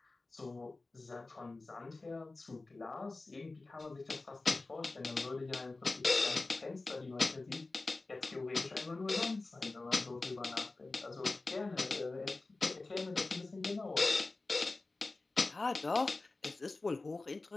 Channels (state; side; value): quieter; right; 3.4 dB